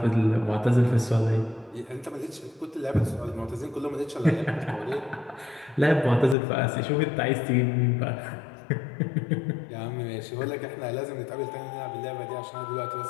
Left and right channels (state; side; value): drops out; right; at 6.4 s